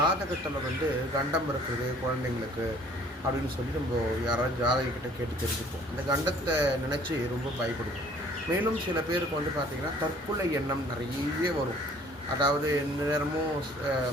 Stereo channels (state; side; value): normal; both; correlation 0.55